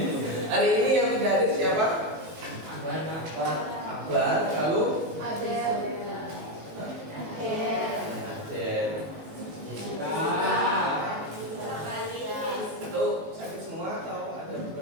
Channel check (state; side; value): late; left; 19 ms